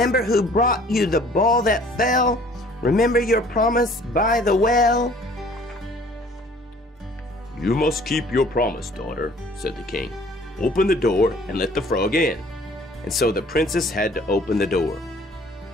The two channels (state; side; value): normal; both; correlation 0.54